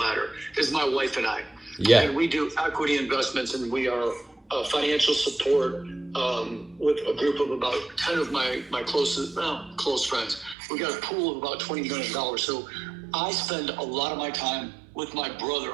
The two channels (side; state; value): left; drops out; at 10.6 s